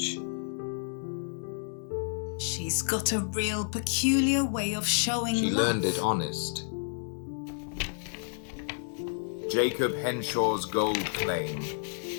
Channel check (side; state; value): right; silent; digital silence